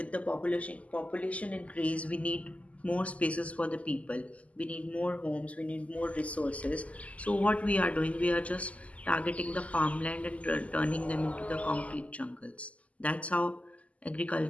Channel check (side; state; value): right; late; 0.068 ms